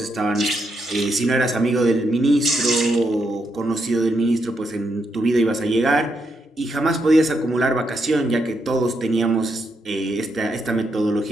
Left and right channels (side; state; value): both; normal; correlation 0.80